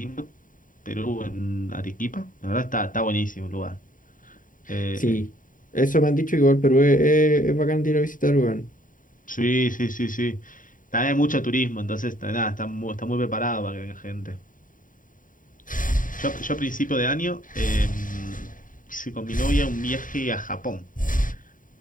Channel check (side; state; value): right; late; 0.39 ms